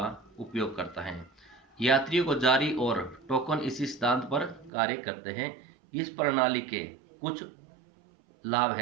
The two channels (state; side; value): drops out; left; at 4.7 s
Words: उपयोग करता है। यात्रियों को जारी और टोकन इसी सिद्धांत पर कार्य करते हैं। इस प्रणाली के कुछ लाभ